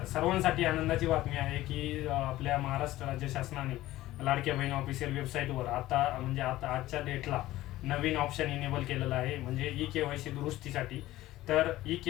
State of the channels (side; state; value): right; quieter; 16.0 dB